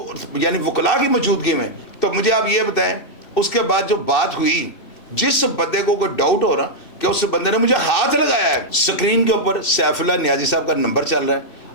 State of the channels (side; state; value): right; late; 3.3 ms